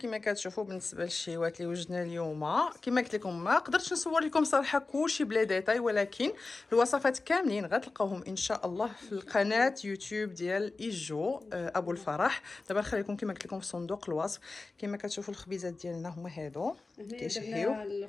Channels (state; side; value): quieter; right; 3.6 dB